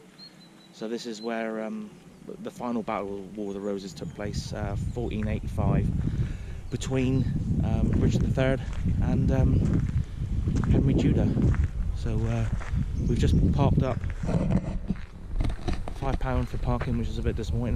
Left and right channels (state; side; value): identical; both; correlation 1.00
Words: So this is where the final battle of War of the Roses took place, 1485, between Richard III and Henry Tudor. So we've just parked up. £5 for parking, which is a bit